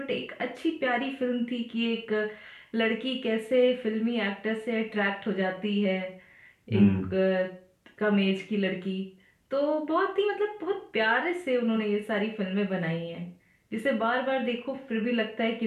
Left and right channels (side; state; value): both; identical; correlation 1.00